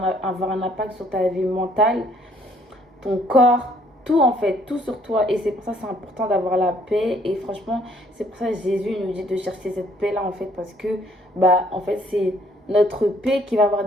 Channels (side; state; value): both; normal; correlation 0.63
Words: un impact sur ta vie mentale, ton corps, tout en fait, tout sur toi. Et c'est pour ça que c'est important d'avoir la paix. Et franchement, c'est pour ça que Jésus nous dit de chercher cette paix-là en fait, parce que bah en fait c'est notre paix qui va avoir